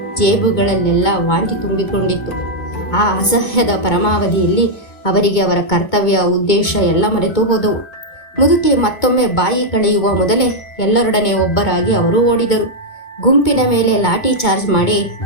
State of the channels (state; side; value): late; right; 2.2 ms